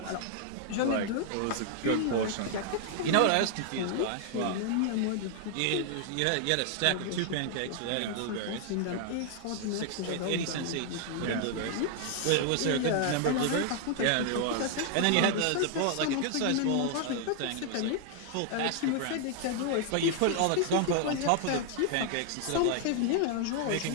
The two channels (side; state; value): both; different; correlation 0.00